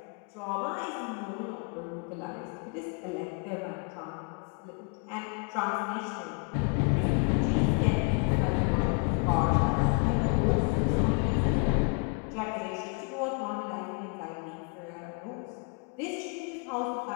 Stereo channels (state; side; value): quieter; right; 36.8 dB